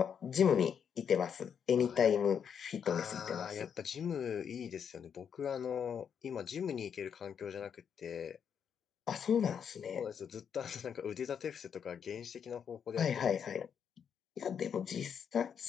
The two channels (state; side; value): quieter; right; 7.6 dB